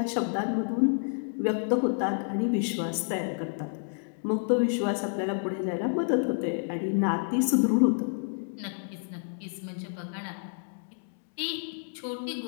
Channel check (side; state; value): right; silent; digital silence